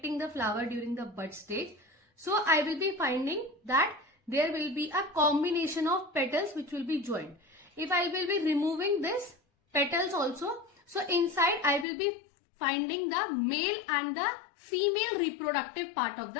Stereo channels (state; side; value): drops out; right; at 11.9 s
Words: the flower during the bud stage. So I will be finding that there will be a combination of petals which will be joined. If I will be removing this petals also, so inside I will be finding the male and the female reproductive part of